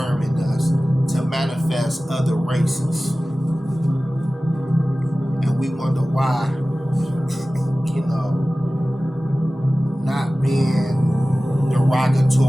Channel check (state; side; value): normal; both; correlation 0.97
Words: in us to manifest other races. And we wonder why, you know, not being